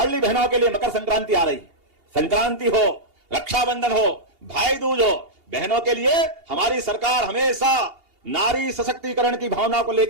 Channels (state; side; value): late; left; 2.8 ms